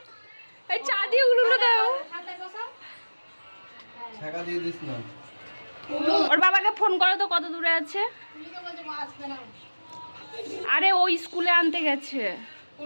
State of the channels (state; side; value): inverted; both; correlation -1.00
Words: এই চা দিয়ে উলুলু দাও। টাকা দিয়ে দিস না। ওর বাবাকে ফোন করো তো, কত দূরে আছে। আরে ও স্কুলে আনতে গেছে।